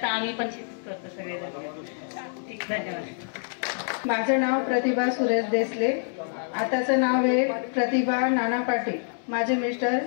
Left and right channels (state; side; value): silent; right; 61 dB below the other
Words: आम्ही पण शेतीच करतो सगळेजण. धन्यवाद. माझं नाव प्रतिभा सुरेश देसले, आताचं नाव आहे प्रतिभा नाना पाटील. माझे मिस्टर